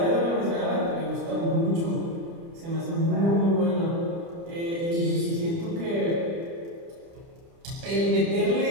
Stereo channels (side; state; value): left; late; 30 ms